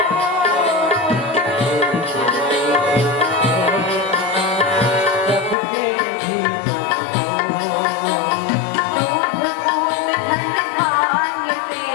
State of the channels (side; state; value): right; drops out; at 5.6 s